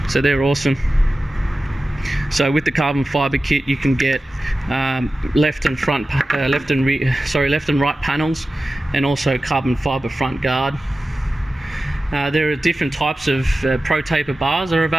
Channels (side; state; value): both; normal; correlation 0.95